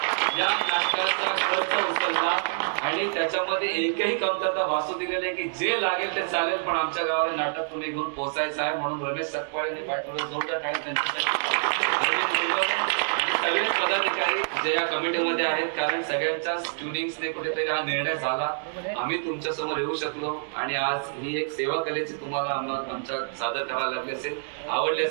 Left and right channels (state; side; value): silent; left; digital silence